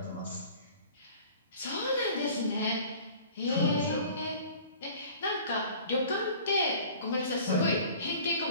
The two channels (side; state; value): both; inverted; correlation -0.46